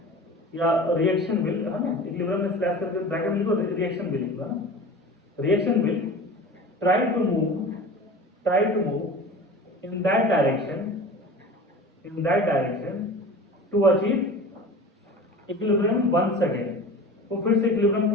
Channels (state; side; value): normal; both; correlation 0.37